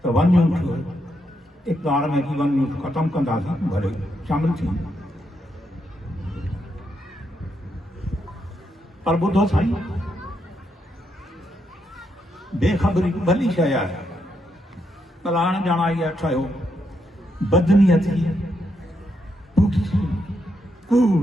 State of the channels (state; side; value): normal; both; correlation 0.80